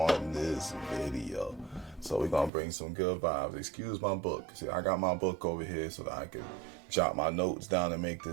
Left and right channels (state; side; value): drops out; left; at 2.5 s